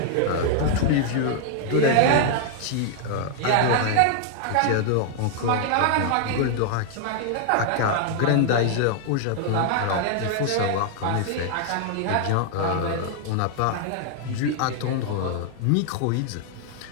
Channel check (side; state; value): both; different; correlation 0.00